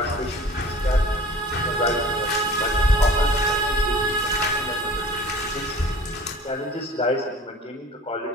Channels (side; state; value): both; normal; correlation 0.44